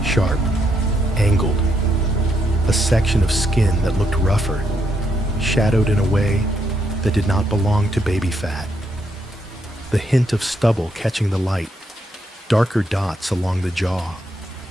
sharp, angled, a section of skin that looked rougher, shadowed in a way that did not belong to baby fat. The hint of stubble catching the light, darker dots along the jaw,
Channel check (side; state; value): both; normal; correlation 0.77